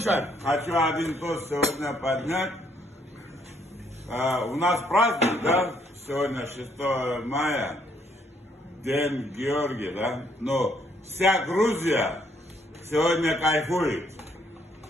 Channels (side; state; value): both; normal; correlation 0.69